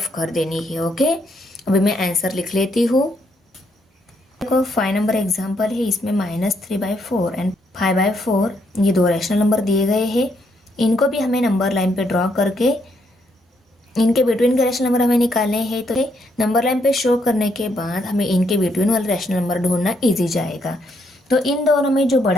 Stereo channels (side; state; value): both; normal; correlation 0.75